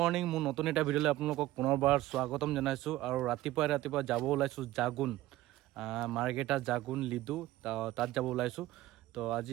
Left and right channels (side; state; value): left; quieter; 16.2 dB